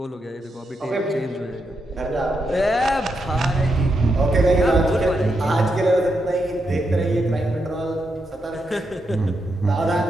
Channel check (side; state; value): both; normal; correlation 0.83